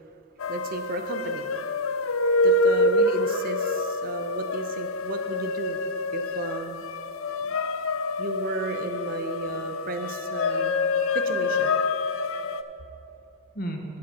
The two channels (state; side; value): normal; both; correlation -0.15